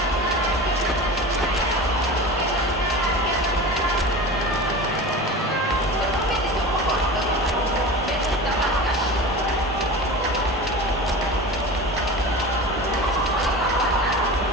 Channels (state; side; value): normal; both; correlation 0.32